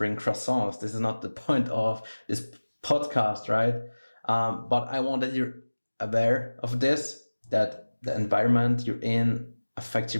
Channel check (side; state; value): both; inverted; correlation -1.00